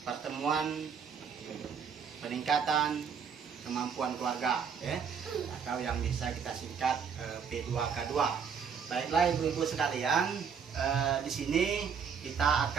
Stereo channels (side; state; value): left; quieter; 6.6 dB